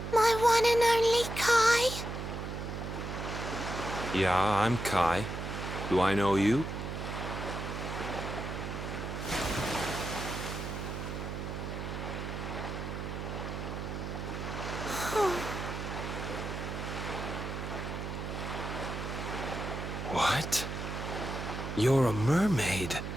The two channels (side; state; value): right; noise; hum, 5 dB below the sound